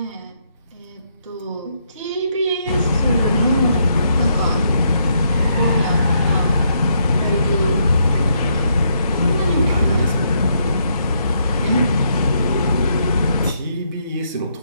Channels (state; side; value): inverted; both; correlation -0.75